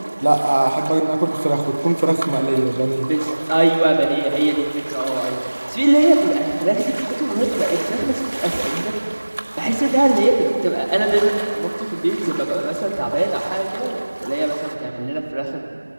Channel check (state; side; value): inverted; both; correlation -1.00